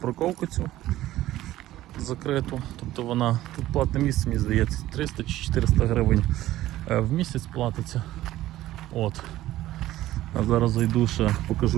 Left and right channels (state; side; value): quieter; left; 14.9 dB